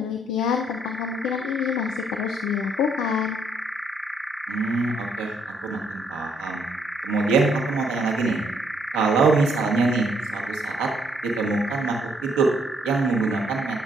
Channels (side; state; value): both; normal; correlation 0.70